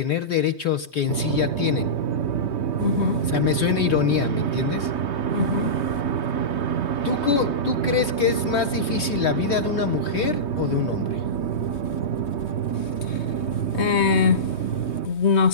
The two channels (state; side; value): late; right; 3.2 ms